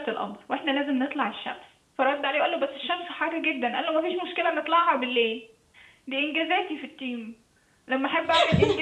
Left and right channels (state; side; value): identical; both; correlation 1.00